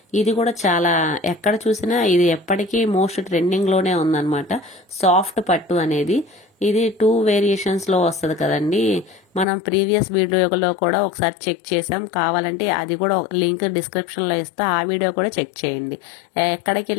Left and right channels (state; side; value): drops out; right; at 9.5 s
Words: ఇది కూడా చాలా ఎక్కడ చూసినా ఇది ఎప్పటికీ మోస్ట్ ట్రెండింగ్లోనే ఉందన్నమాట. సాఫ్ట్ పట్టు అనేది ఇది 2 వేరియేషన్స్లో వస్తుంది కదండి. మనం ప్రీవియస్ వీడియోలో కూడా ఒకసారి చెక్ చేసాం, కావాలంటే అది కూడా లింక్ డిస్క్రిప్షన్లో ఇస్తా, ఆ వీడియో కూడా చెక్ చేయండి. ఎక్కడికి